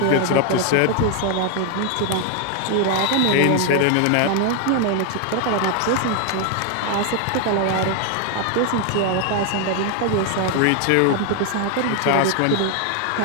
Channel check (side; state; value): both; different; correlation 0.00